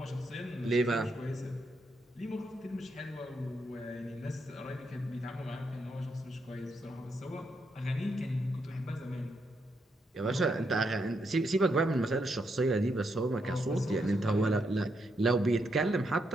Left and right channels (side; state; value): both; normal; correlation 0.79